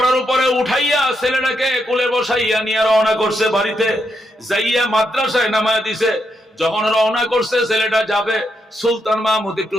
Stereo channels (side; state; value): both; normal; correlation 0.81